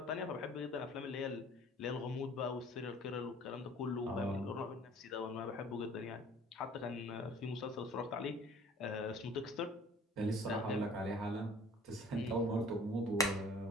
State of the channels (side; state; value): both; normal; correlation 0.51